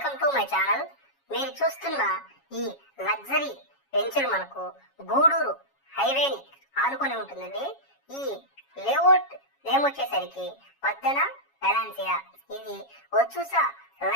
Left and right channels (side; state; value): right; late; 7.2 ms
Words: to my channel. మీరు చూస్తున్న ఈ లగ్జరీ వెంచర్ మనకు గూడూరు హైవేని ఆనుకొని ఉంటుందండి. ఈ లేఅవుట్ నేమ్ వచ్చేసరికి పద్దన వెలాన్సియా. ఇది వచ్చూసా